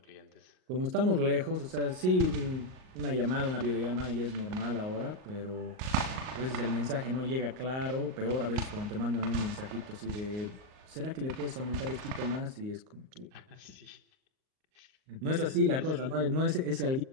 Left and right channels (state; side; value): late; left; 38 ms